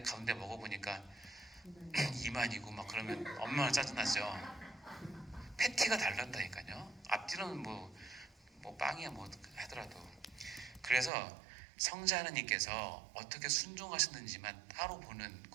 가운데 먹어보니까 이만이고 막 그러면 얼마나 짜증나죠. 패티가 다른다니까요. 앞뒤로는 뭐 빵이야 뭐 하더라도. 그래서 성자 하나님께서 어떻게 순종하셨는지만 따로 보는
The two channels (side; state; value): left; drops out; at 11.1 s